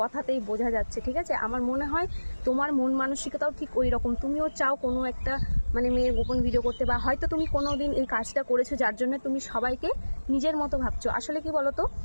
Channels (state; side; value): inverted; both; correlation -1.00